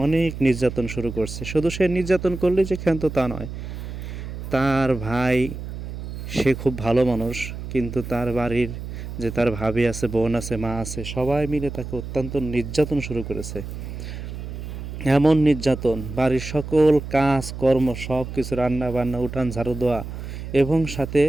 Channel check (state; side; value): noise; right; hum, 8 dB below the sound